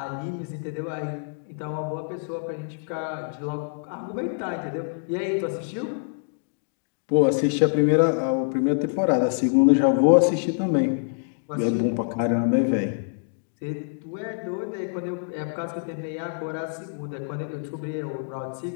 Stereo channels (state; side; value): silent; right; digital silence